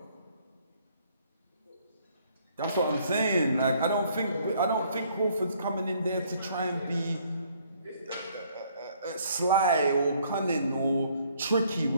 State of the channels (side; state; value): both; inverted; correlation -0.64